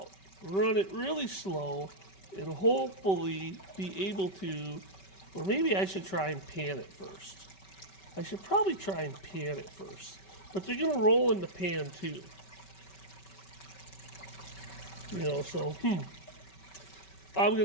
run it really slow, and hopefully be able to, or maybe I should try and pan it first. I should probably try and pan it first. But they're going to roll in the pan too. You know, so, I'm going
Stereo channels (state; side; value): late; right; 5.2 ms